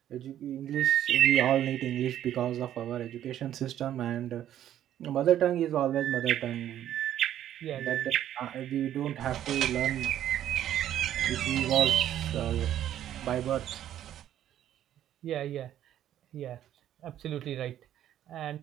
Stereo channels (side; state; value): left; quieter; 11.4 dB